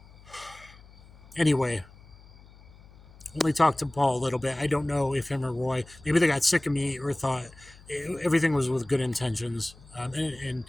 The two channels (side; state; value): left; noise; hum, 23 dB below the sound